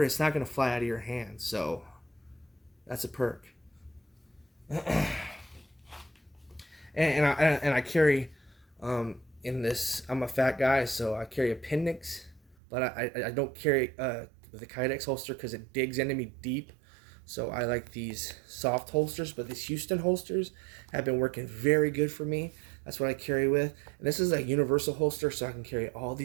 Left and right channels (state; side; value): drops out; left; at 12.6 s